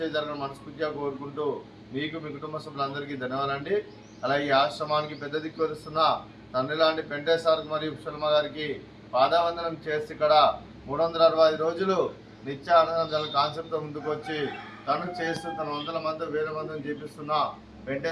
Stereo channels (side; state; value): both; identical; correlation 1.00